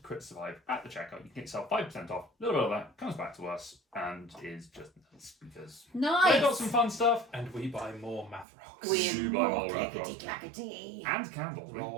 at the checkout. You can get yourself 5% off. A little bit of that comes back to us and is just nice because Nice. they got some fun stuff. And we buy more math rocks. We buy more math rocks. clickety-clackety. And candles.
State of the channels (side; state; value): left; drops out; at 8.5 s